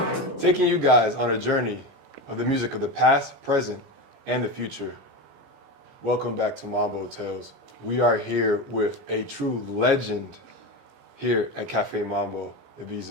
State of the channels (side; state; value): left; late; 17 ms